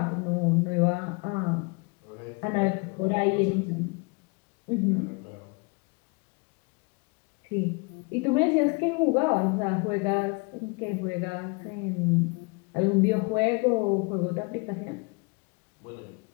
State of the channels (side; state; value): right; quieter; 30.6 dB